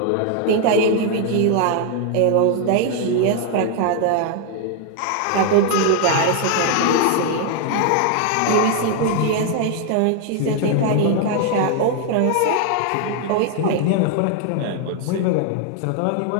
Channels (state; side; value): different; both; correlation 0.00